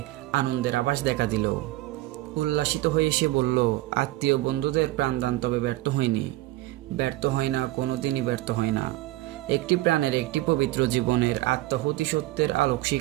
আনন্দের আভাস দেখা দিল। উল্লাসিত হয়ে সে বলল, আত্মীয় বন্ধুদের প্রাণদান তবে ব্যর্থ হয়নি, ব্যর্থ হয় না, কোনোদিনই ব্যর্থ হয় না। একটি প্রাণের, একটি পবিত্র জীবনের আত্মাহুতি সত্যের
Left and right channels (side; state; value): left; quieter; 17.4 dB